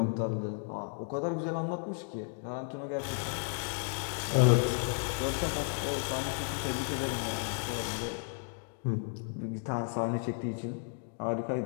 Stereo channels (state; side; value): silent; right; 55 dB below the other